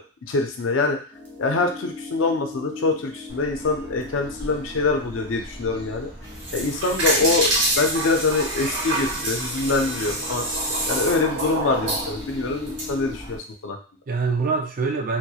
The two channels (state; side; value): normal; both; correlation 0.08